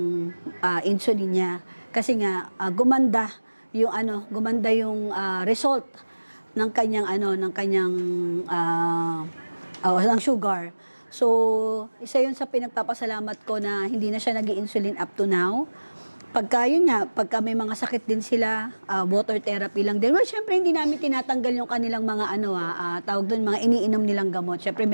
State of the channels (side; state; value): both; inverted; correlation -1.00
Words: insulin niya. Kasi nga, gumanda yung result ng kanyang ng sugar. So, isa 'yun sa pinagpapasalamat ko na hindi na siya nag-i-insulin up to now. Pagka may mga sakit din sila, water therapy lang din. Well, syempre hindi namin tinatanggal yung kanilang mga tawag doon, mga iniinom nilang gamot. Syempre